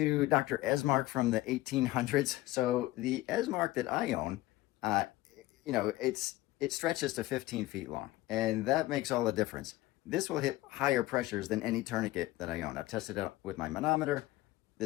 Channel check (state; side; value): quieter; right; 17.4 dB